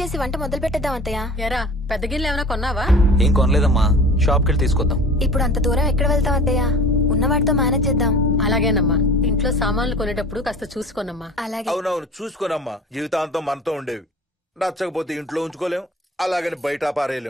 వంట మొదలు పెట్టేద్దాం అత్తయ్య. ఎరా, పెద్ద గిన్నెలు ఏమైనా కొన్నావా? ఏం కొనలేదమ్మా, షాప్ కెళ్ళి తీసుకొద్దాం. ఇప్పుడు అంత దూరం ఎక్కడ వెళ్తాం అత్తయ్య? ఉన్న వాటితో మేనేజ్ చేద్దాం. అలాగేనమ్మా, ఇంట్లో సామాన్లు కొనేటప్పుడు కాస్త చూసుకోనమ్మా. అలాగే. అవునవును, చూసుకోనమ్మా. జీవితాంతం మనతో ఉండేవి. నచ్చకపోతే ఇంట్లో ఉంచుకోలేం, అలాగని బయట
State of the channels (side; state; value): both; normal; correlation 0.41